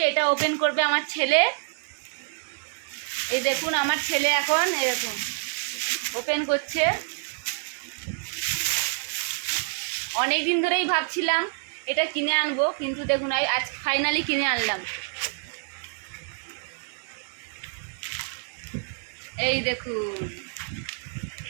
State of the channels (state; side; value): silent; left; 57 dB below the other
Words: এটা ওপেন করবে আমার ছেলে। এই দেখুন আমার ছেলে এখন এরকম ওপেন করছে। অনেক দিন ধরেই ভাবছিলাম এটা কিনে আনবো, কিন্তু দেখুন আজ ফাইনালি কিনে আনলাম। এই দেখুন,